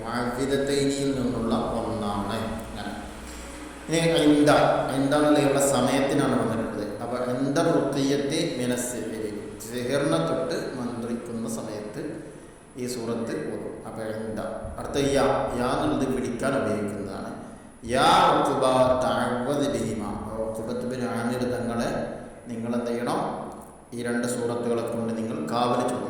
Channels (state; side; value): identical; both; correlation 1.00